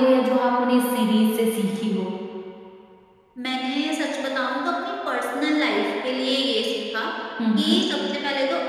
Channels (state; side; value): identical; both; correlation 1.00